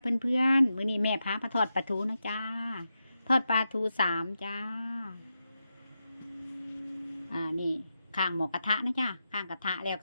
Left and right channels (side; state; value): both; inverted; correlation -0.88